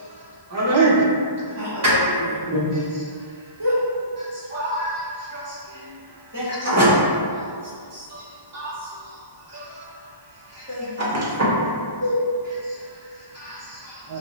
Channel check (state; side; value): inverted; both; correlation -0.33